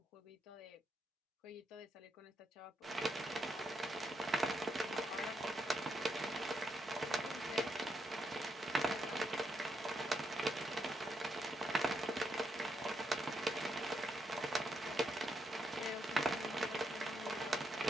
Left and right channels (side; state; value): both; normal; correlation 0.80